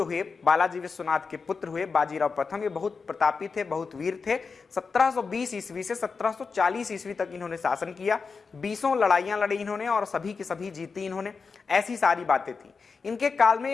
हुए, बालाजी विश्वनाथ के पुत्र हुए बाजीराव प्रथम, ये बहुत प्रतापी थे, बहुत वीर थे। 1720 ईस्वी से 1740 ईस्वी तक इन्होंने शासन किया। 20 लड़ाइयां लड़ी इन्होंने और सभी की सभी जीती इन्होंने, ऐसी सारी बातें थी। इनके काल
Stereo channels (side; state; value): right; quieter; 4.9 dB